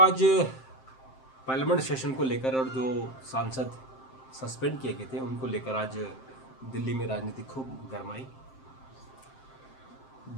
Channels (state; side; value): late; right; 7.6 ms